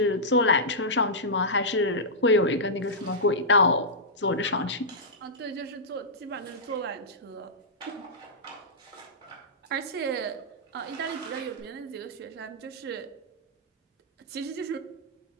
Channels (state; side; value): normal; both; correlation -0.13